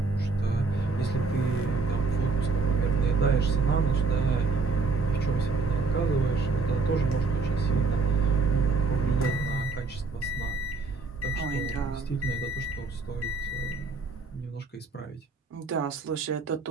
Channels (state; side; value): quieter; left; 4.0 dB